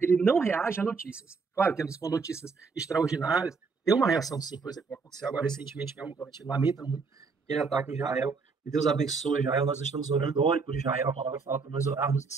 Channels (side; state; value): left; quieter; 4.8 dB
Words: ele não reage a notícias. Claro que com notícias extraordinárias, tem uma reação sim, por exemplo, aconteceu agora recentemente, que a gente lamenta muito aquele ataque em Israel, que Deus abençoe Israel, nós estamos orando, ore por Israel, a palavra fala para nós orarmos em